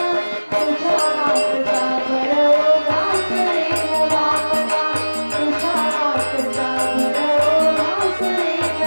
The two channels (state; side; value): inverted; both; correlation -1.00